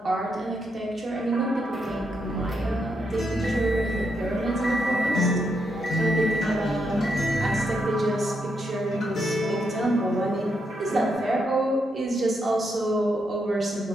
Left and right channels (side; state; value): both; normal; correlation 0.80